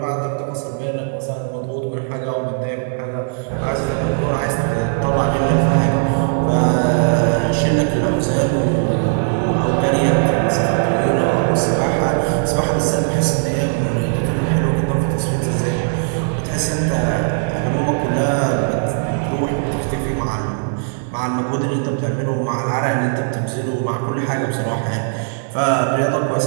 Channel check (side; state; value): left; silent; digital silence